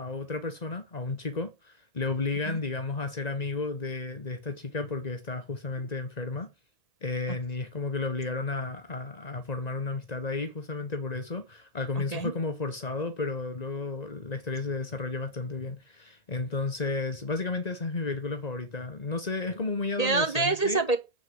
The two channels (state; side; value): late; right; 1.8 ms